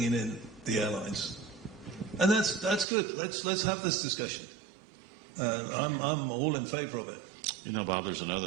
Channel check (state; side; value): drops out; left; at 2.9 s